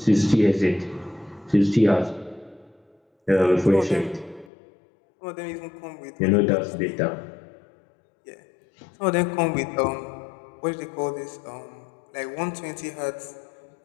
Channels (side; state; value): right; drops out; at 4.5 s